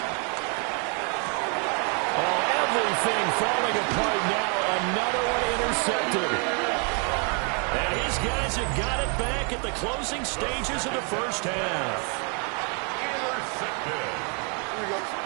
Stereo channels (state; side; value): quieter; left; 37.5 dB